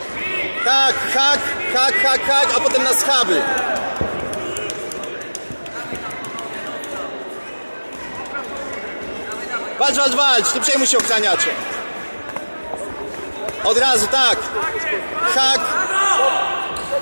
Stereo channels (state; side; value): inverted; both; correlation -1.00